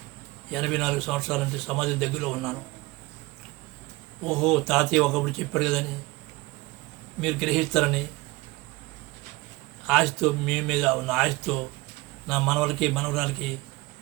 84 సంవత్సరాలంటే సమాజం దగ్గరలో ఉన్నాను. ఓహో తాతయ్య ఒకప్పుడు చెప్పాడు కదని మీరు గ్రహిస్తారని ఆశతో, మీ మీద ఉన్న ఆశతో నా మనవలకి మనవరాలకి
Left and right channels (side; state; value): left; quieter; 21.5 dB